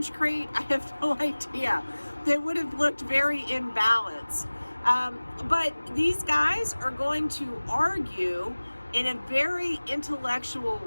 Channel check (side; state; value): both; inverted; correlation -1.00